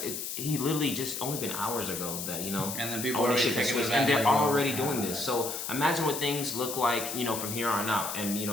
he literally just only been hours ago that, and then people ownership has switched, and they're already doing this. So imagine what things look like, from here on out and,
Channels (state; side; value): noise; left; hiss, 5 dB below the sound